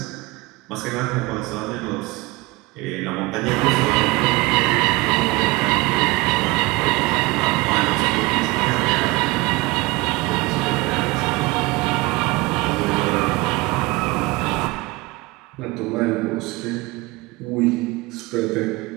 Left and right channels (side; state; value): left; quieter; 22.6 dB